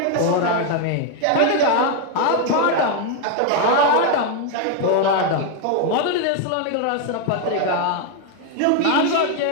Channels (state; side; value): different; both; correlation 0.01